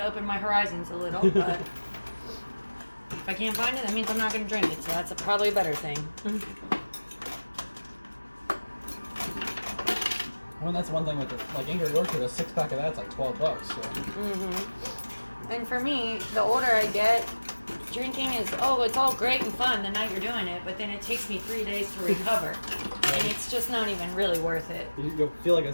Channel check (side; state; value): both; inverted; correlation -1.00